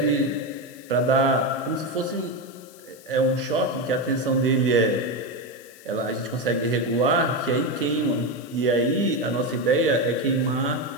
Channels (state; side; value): noise; left; hiss, 23 dB below the sound